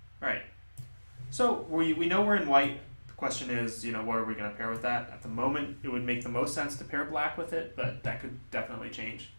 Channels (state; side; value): inverted; both; correlation -1.00